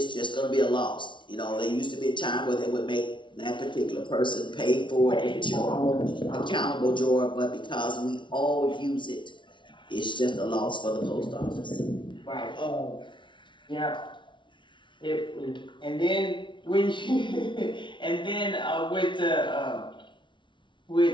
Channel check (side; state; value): right; late; 0.24 ms